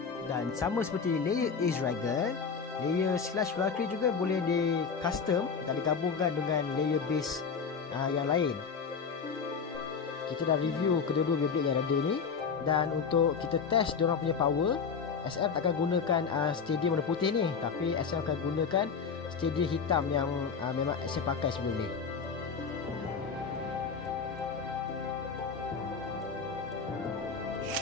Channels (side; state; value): right; quieter; 5.8 dB